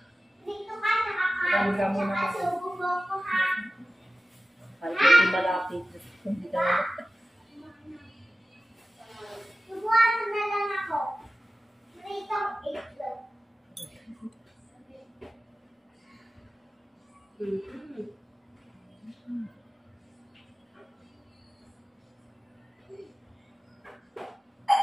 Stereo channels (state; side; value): normal; both; correlation 0.95